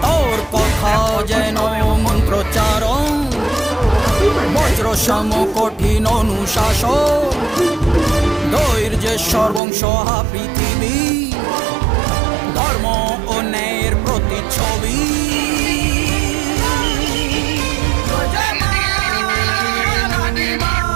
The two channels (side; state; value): left; drops out; at 9.6 s